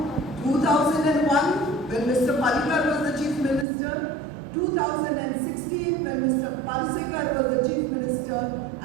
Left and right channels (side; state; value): left; drops out; at 3.7 s